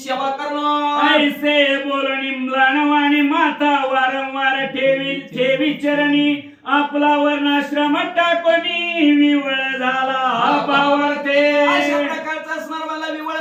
करणार. ऐसे बोलणी म्लानवाणी माता वारंवार ठेवी चरणी आपला वर्णाश्रम टाकोनी विवळ झाला पावरते. अशा प्रकारचा असणार मला विवळ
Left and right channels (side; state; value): both; identical; correlation 1.00